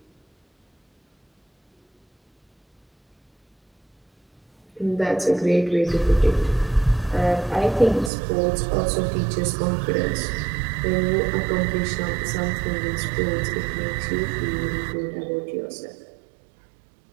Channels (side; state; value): left; drops out; at 8.1 s